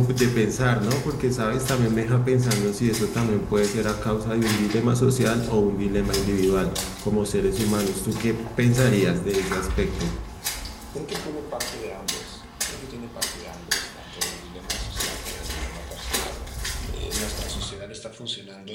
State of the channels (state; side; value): identical; both; correlation 1.00